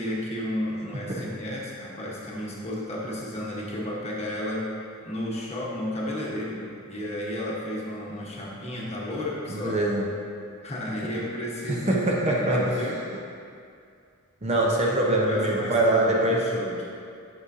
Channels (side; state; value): both; normal; correlation 0.26